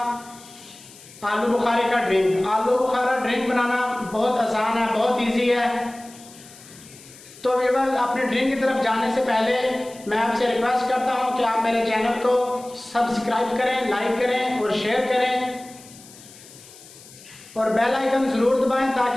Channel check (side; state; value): left; noise; hiss, 21 dB below the sound